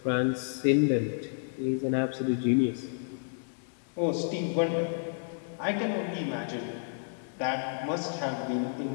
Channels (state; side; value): silent; right; digital silence